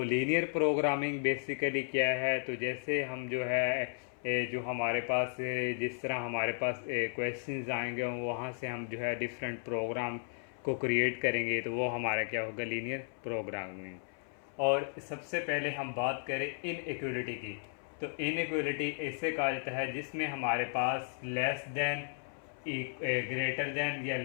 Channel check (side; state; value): right; silent; 55 dB below the other